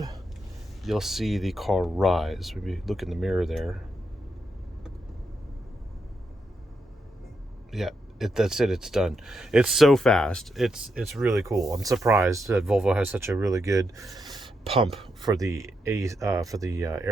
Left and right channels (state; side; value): normal; both; correlation 0.83